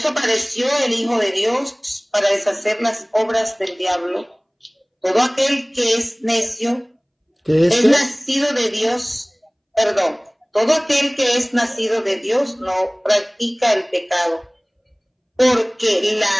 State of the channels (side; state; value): both; identical; correlation 1.00